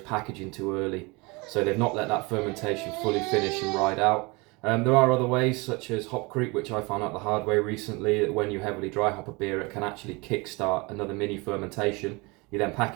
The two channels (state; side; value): quieter; left; 26.5 dB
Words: packaging too early. So they've not let that fermentation fully finish and ride out. There are other ways, such as hop creep, which I found out the hard way recently, that when you heavily dry hop a beer, it can actually kickstart another mini fermentation. You then